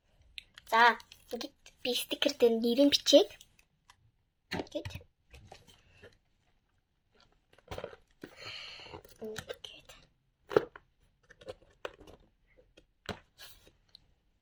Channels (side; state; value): both; identical; correlation 1.00